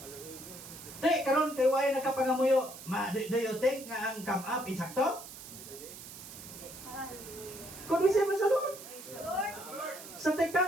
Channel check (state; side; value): noise; right; hiss, 14 dB below the sound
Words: Te, karon kay way nakapangamuyo, do you think nga ang come up insakto? Kung siya sa Lord. Sa